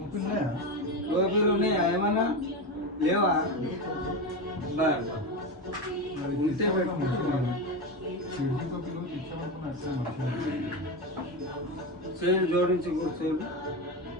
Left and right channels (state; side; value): normal; both; correlation 0.17